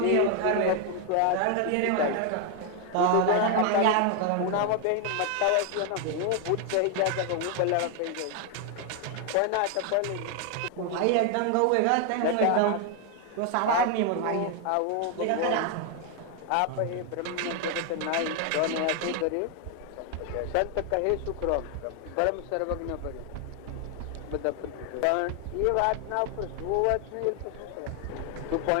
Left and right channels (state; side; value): different; both; correlation 0.01